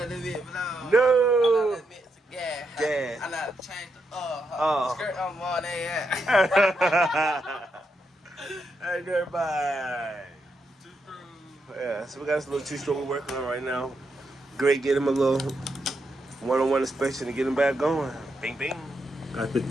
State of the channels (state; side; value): normal; both; correlation 0.82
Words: the bit blow. No. I let the bit gas. Gas. I like to change the Oh. skirt on more than Hey, dirtbike. Yeah, so we got this little 2-stroke we're working on right now. Great, get him a little one-on-one inspection to get him back going. Bing, bing. Got the